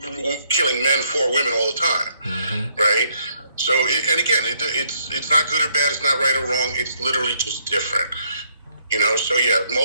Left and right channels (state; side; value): inverted; both; correlation -0.70